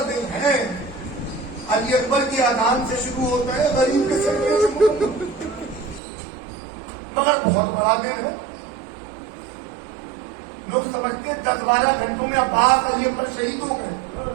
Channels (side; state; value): left; drops out; at 6.0 s